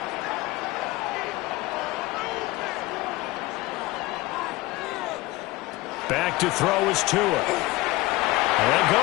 Back to throw is Tua. And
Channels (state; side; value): quieter; right; 19.9 dB